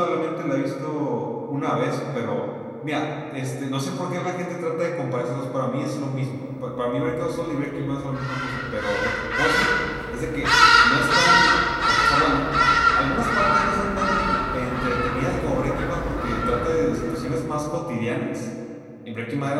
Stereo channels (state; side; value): identical; both; correlation 1.00